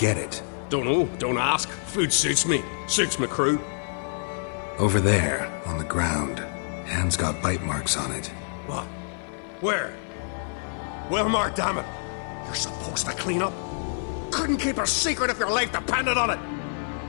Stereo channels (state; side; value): silent; right; digital silence